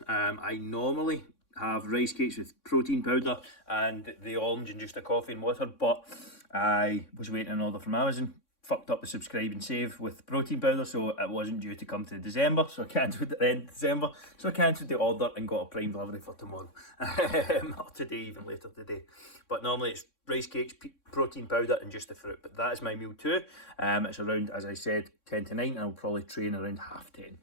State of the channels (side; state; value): right; late; 3.6 ms